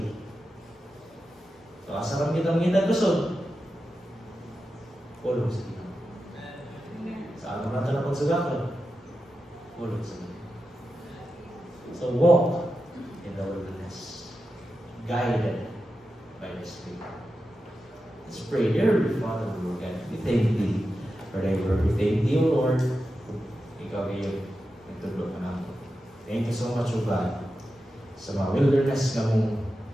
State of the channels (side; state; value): both; normal; correlation 0.90